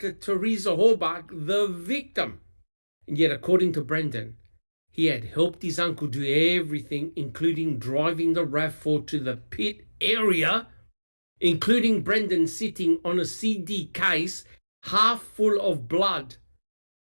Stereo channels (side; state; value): both; inverted; correlation -1.00